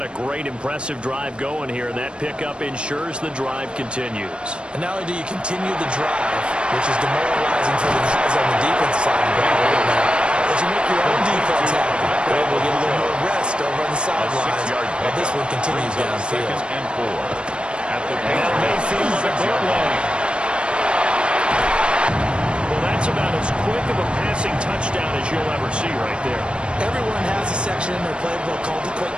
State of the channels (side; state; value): left; late; 0.056 ms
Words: a great, impressive drive going here, and that pickup ensures the drive continues. And not only do you continue the drive, which is demoralizing for the guys on the defense side of the ball right now, but you make your own defense happy. They're able to get a little more rest over on the sidelines. But this one continues downfield. 2nd and 4 at the Mayfield at the goal line. Well, that's about as quick of a passing touchdown as you'll ever see right there. Everyone has a section in their playbook called the quick